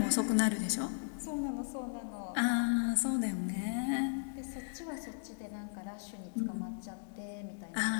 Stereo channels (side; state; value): right; silent; digital silence